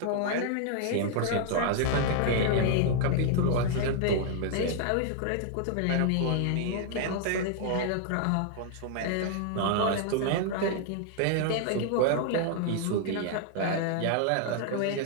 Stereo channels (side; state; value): both; different; correlation 0.00